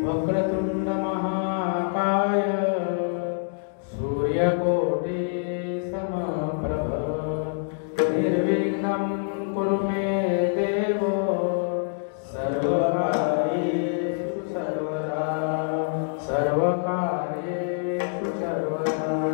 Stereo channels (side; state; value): right; silent; digital silence